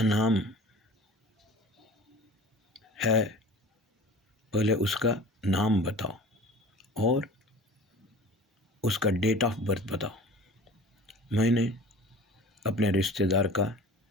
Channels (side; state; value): both; normal; correlation 0.41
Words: नाम है, पहले उसका नाम बताओ और उसका डेट ऑफ बर्थ बताओ। मैंने अपने रिश्तेदार का